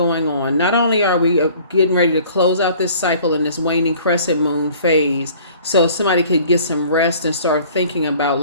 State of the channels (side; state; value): both; inverted; correlation -0.51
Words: on. Not only are we getting ready to close out this cycle in this waning crescent moon phase, so somebody could get some rest and start thinking about